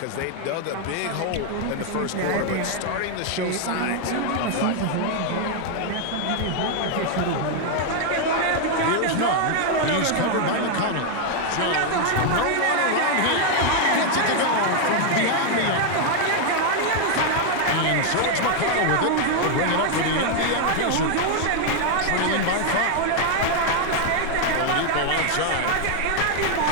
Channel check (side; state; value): both; different; correlation 0.00